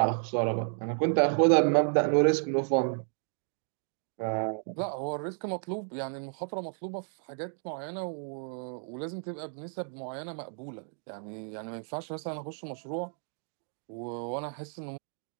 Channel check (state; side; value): silent; left; 56 dB below the other